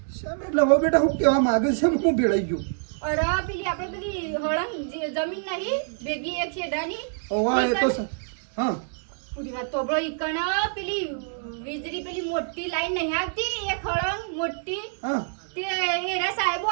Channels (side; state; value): left; silent; 61 dB below the other